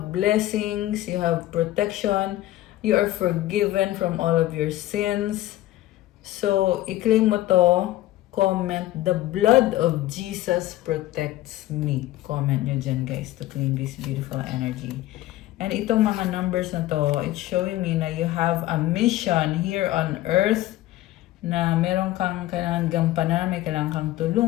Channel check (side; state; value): right; quieter; 15.6 dB